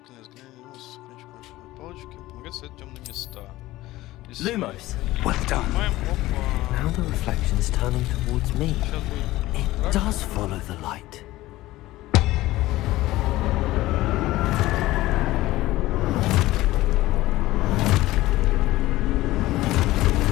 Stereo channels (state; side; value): quieter; right; 17.2 dB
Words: Люмос, кончик маршевой палочки, помогает ставить темные места. Lumos. Well done. Now the reflection's turning towards me. Сейчас будет. It does follow the light.